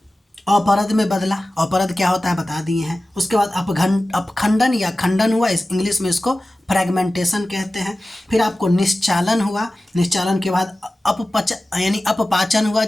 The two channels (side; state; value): both; normal; correlation 0.96